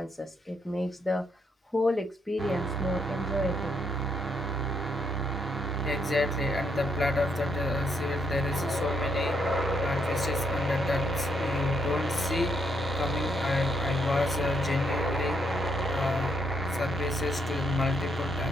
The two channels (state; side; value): normal; both; correlation 0.75